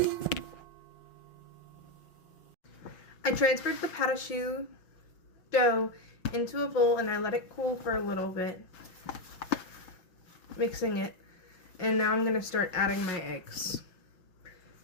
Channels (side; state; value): right; late; 5.6 ms